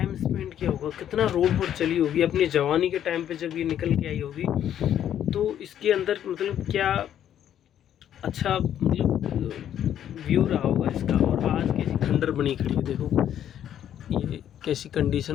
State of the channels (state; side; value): quieter; right; 10.4 dB